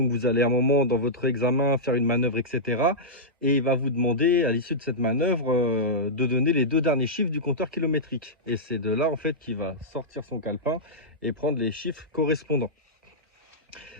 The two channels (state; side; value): normal; both; correlation -0.12